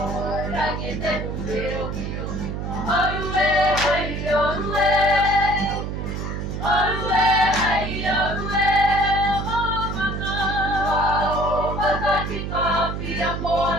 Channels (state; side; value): noise; right; hum, 4 dB below the sound